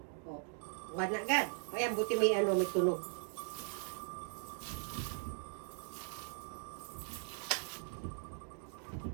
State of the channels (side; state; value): left; silent; 51 dB below the other